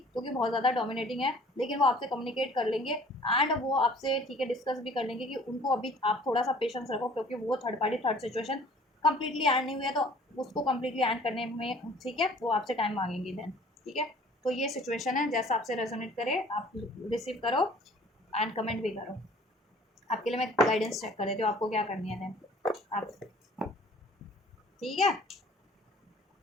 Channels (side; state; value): both; normal; correlation 0.52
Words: क्योंकि बहुत ज़्यादा डोमिनेटिंग है, लेकिन वो आपसे कम्युनिकेट कर लेंगे एंड वो आपसे ठीक है डिस्कस भी कर लेंगे कि उनको अभी आप थोड़ा सा पेशेंस रखो, क्योंकि वो third party third situation completely add नहीं हुई है तो उसको कंप्लीटली ऐड करने में ठीक है वो आपसे टाइम मांगेंगे देन, ठीक है। तो ये सिचुएशन है, जैसा आपसे रेजोनेट करे आप रिसीव करो एंड कमेंट भी करो। आपके लिए मैं गाइडेंस चेक कर देती हूँ आपको क्या करनी है देन आप, ठीक है।